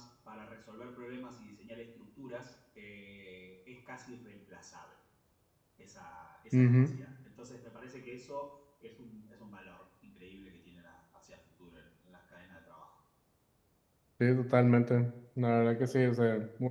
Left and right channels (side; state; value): both; identical; correlation 1.00